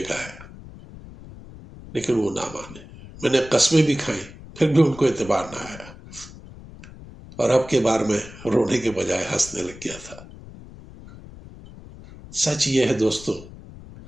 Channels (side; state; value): left; noise; rumble, 17 dB below the sound